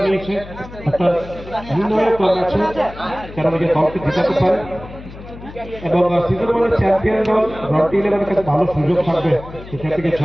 নিয়েছে একটা নির্ণায়ক ম্যাচে যারা নিজের দলকে জেতাতে পারে এবং সিজন ওয়ানের চ্যাম্পিয়ন দল রন্টি 11 কাছে ভালো সুযোগ থাকবে সেখান থেকে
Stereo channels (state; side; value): noise; left; hum, 15 dB below the sound